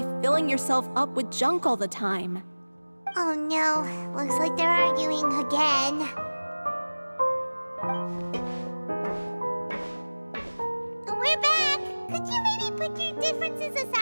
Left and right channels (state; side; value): inverted; both; correlation -1.00